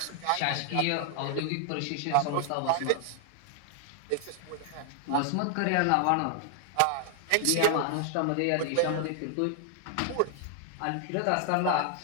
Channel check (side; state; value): both; different; correlation 0.00